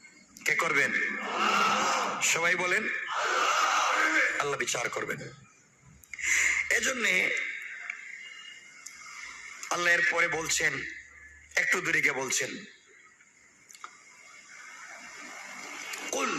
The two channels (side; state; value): both; identical; correlation 1.00